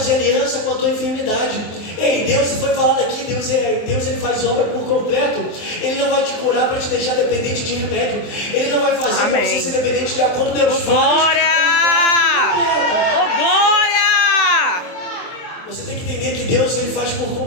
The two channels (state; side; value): late; right; 23 ms